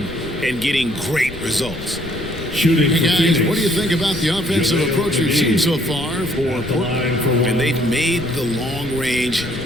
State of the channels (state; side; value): noise; left; rumble, 14 dB below the sound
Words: and getting great results. Shooting hey for guys, Phoenix. what do you think about the offensive approach we've seen so far for Portland? And they've made the long range